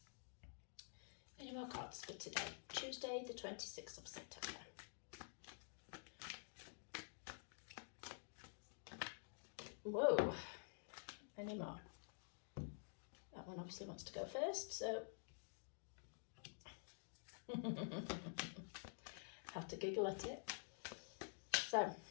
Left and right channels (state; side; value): silent; right; digital silence